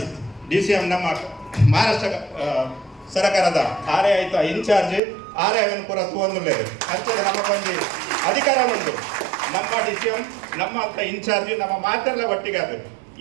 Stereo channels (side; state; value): left; drops out; at 5.0 s